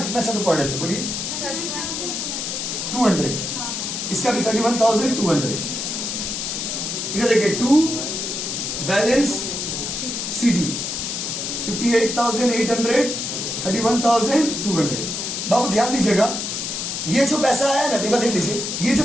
अच्छा तो पढ़ लेते। बोलिए 200, इसका भी 31,200। इधर देखिए 2 बैलेंस CD 58,800 31,200। बाबू ध्यान दीजिएगा, ये जो पैसा आया ना, देख लीजिए, ये जो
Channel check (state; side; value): noise; left; hiss, 3 dB below the sound